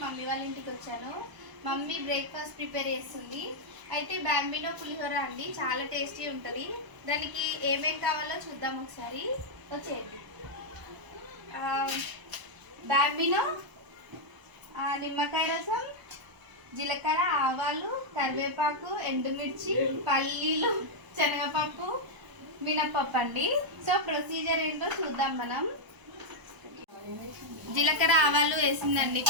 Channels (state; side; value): late; left; 1.0 ms